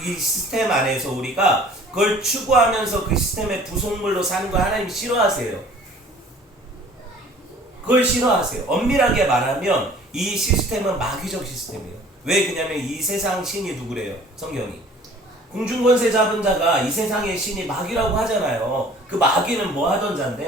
안에서 우리가 그걸 추구하면서 그 시스템의 부속물로 사는 걸 하나님이 싫어하세요. 그걸 싫어하세요. 엄밀하게 말하면 이 시스템은 마귀적 시스템이에요. 왜 그냐면 이 세상 신이 누구래요? 성경이. 공중권세 잡은 자가 이 세상의 신이 마귀라고 하잖아요. 그 마귀는 뭐 하던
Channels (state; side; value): normal; both; correlation 0.50